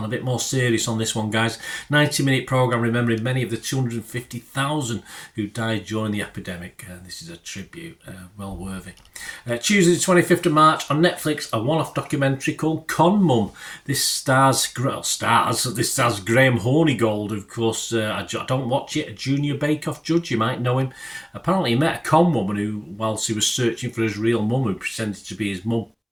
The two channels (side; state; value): both; identical; correlation 1.00